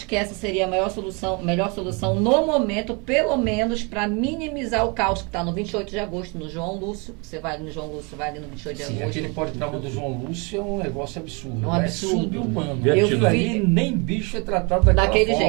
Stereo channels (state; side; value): quieter; left; 31.2 dB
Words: que essa seria a melhor solução no momento, pelo menos para minimizar o caos que está no 28 de agosto, no João Lúcio. Você vai ali no João Lúcio, vai ali no 28 de Sim, agosto. aquele politrauma do João Lúcio é um negócio absurdo. É um absurdo. É sub-humano. Eu Aquilo ali nem bicho é tratado daquele